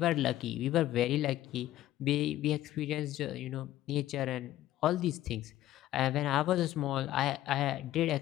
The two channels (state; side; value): quieter; right; 14.0 dB